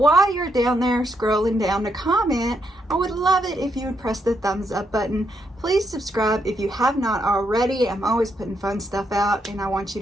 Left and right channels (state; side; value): normal; both; correlation 0.78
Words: you're down there scrolling down to comment, I would love it if you would press the thumbs up button. Please subscribe if you have not already. I'm always putting fun stuff out and I want you